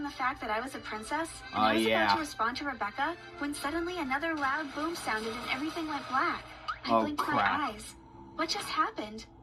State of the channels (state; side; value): identical; both; correlation 1.00